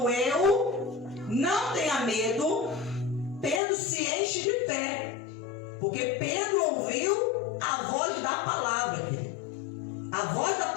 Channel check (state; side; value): drops out; right; at 3.6 s